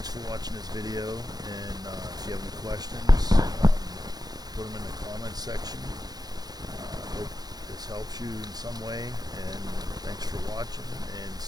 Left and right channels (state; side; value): late; left; 0.19 ms